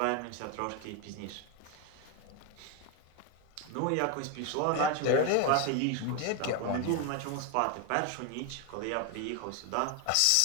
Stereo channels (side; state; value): both; different; correlation 0.01